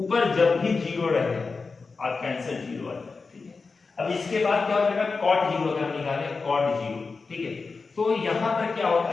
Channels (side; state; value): right; quieter; 4.4 dB